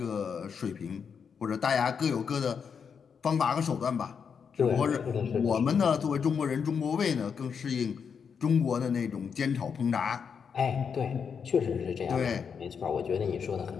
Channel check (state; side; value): quieter; right; 6.6 dB